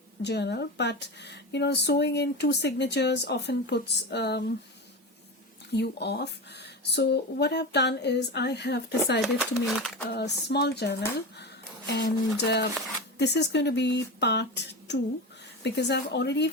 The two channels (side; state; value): both; normal; correlation 0.23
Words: journal, but sewing in two signatures often puts you off. So what I've done is I have decided to make a small journal, and this is going to be part 2, because I've already